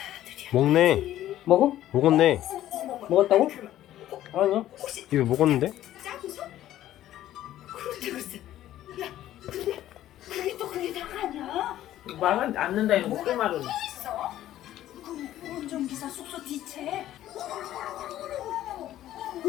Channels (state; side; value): quieter; right; 13.1 dB